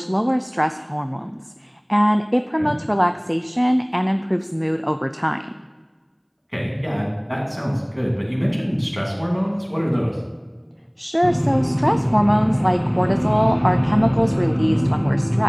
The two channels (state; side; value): identical; both; correlation 1.00